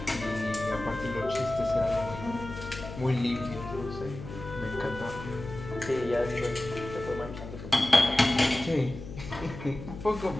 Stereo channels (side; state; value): left; noise; hum, 11 dB below the sound